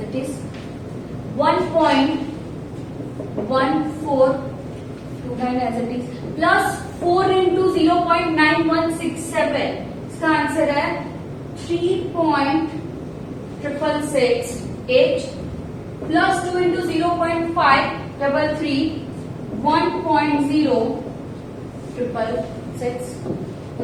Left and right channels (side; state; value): both; identical; correlation 1.00